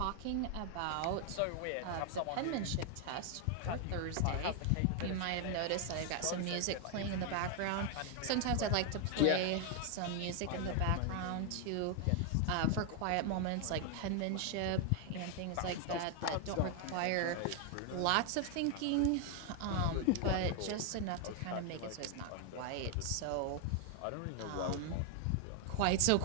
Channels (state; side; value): different; both; correlation 0.00